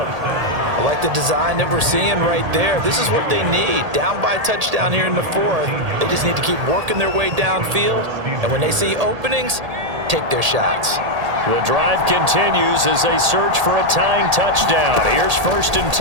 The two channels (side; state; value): left; late; 1.8 ms